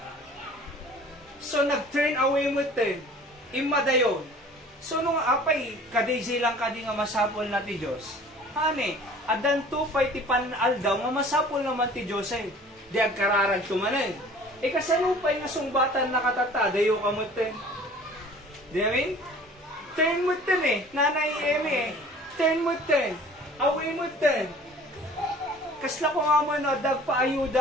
So nag-turn away mo ten, imadayo. So nung apay, kadayjay lang kadi nga masapol na ti Diyos. Hane, adan to pa'y ti panal daw, nga masapol naman ti Diyos ay. Di agkararag tumanin. Kasano pa'y nga sungbatan na katata, dayo kamutin. Di amin? Turn mo ten eh. Nanay Eme eh. Turn mo ten. Away mo ten. Kasla ko nga mo no,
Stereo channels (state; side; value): normal; both; correlation 0.47